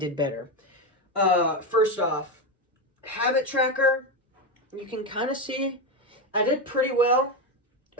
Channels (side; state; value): both; normal; correlation 0.12